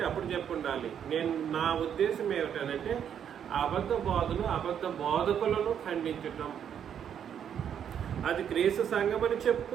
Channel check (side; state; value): left; quieter; 8.7 dB